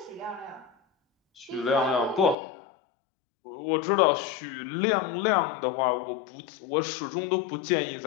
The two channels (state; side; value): drops out; right; at 2.4 s